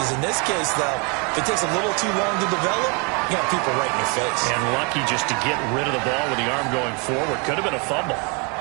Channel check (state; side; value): quieter; left; 32.9 dB